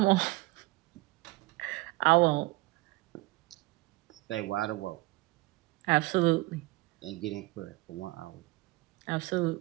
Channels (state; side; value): quieter; left; 21.8 dB